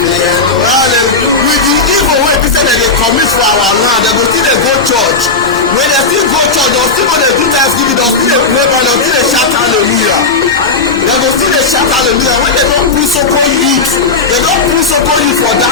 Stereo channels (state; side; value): quieter; right; 4.2 dB